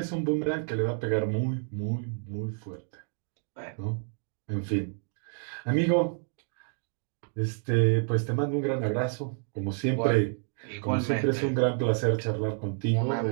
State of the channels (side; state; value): left; silent; 58 dB below the other